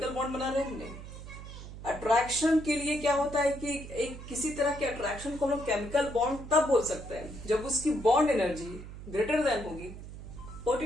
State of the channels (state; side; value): noise; right; hum, 12 dB below the sound